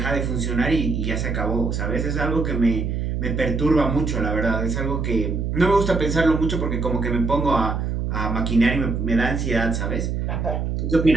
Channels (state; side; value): noise; right; hum, 1 dB below the sound